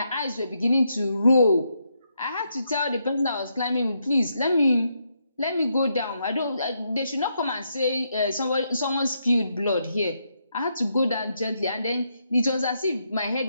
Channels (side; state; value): both; inverted; correlation -0.79